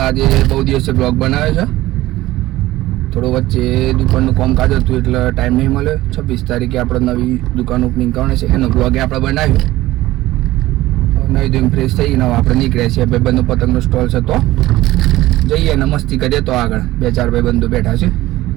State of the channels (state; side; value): quieter; left; 16.9 dB